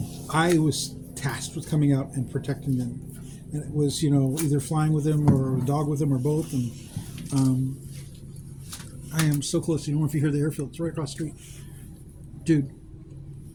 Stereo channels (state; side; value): identical; both; correlation 1.00